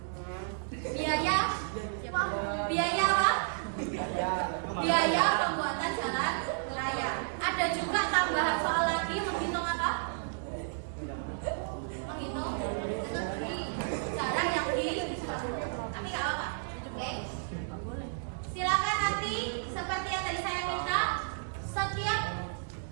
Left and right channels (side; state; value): left; silent; digital silence